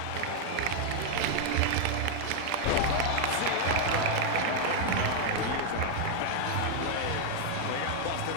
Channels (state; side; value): different; both; correlation 0.00